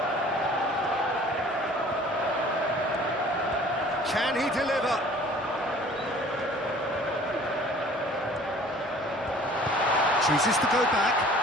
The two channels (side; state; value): both; normal; correlation 0.50